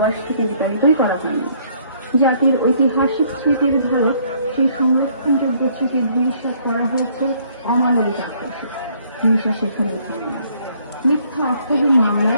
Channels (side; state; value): both; inverted; correlation -0.64